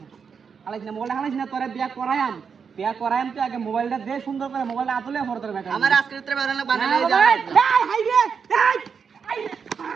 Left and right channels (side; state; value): left; quieter; 6.3 dB